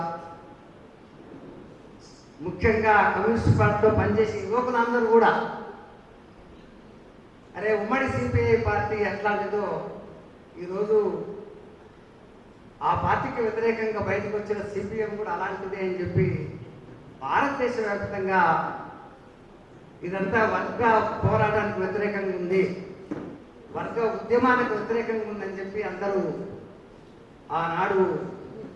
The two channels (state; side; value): identical; both; correlation 1.00